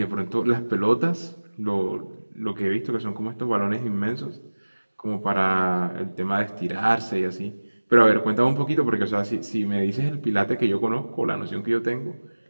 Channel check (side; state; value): both; inverted; correlation -1.00